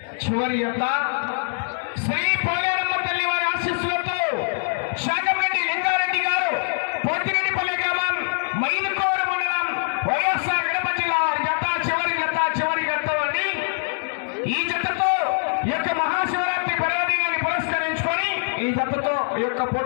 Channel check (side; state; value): right; silent; digital silence